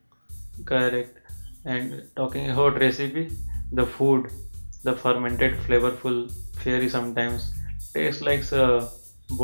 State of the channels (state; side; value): inverted; both; correlation -1.00